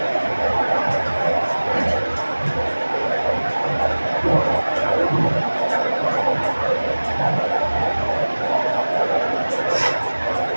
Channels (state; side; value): inverted; both; correlation -1.00